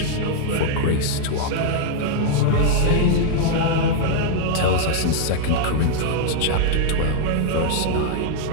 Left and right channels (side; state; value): both; different; correlation -0.01